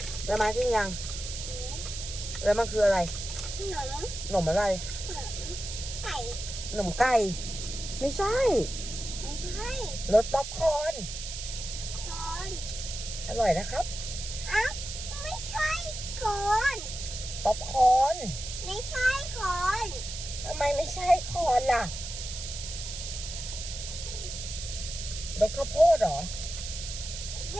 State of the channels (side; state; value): right; noise; hiss, 7 dB below the sound